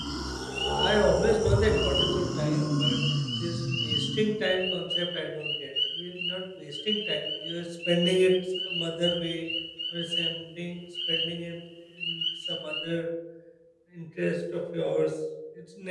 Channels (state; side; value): identical; both; correlation 1.00